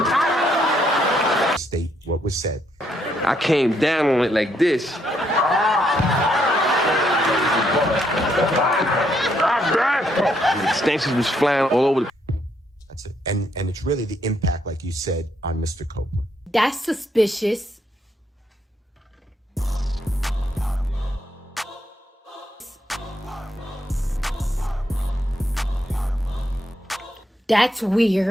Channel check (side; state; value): both; normal; correlation 0.74